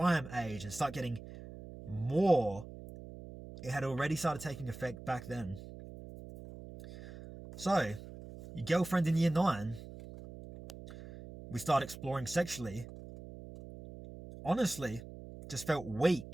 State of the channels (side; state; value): right; noise; hum, 14 dB below the sound